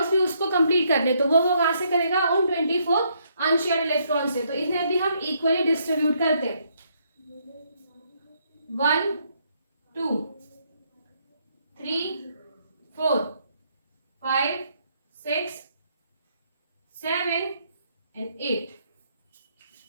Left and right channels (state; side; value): inverted; both; correlation -0.72